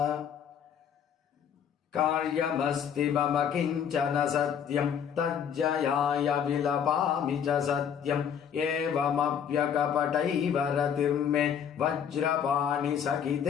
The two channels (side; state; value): right; quieter; 8.2 dB